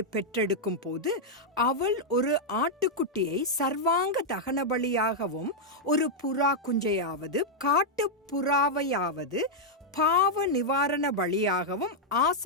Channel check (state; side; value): normal; both; correlation -0.03